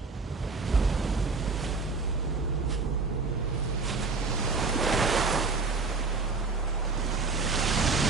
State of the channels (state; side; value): quieter; left; 4.2 dB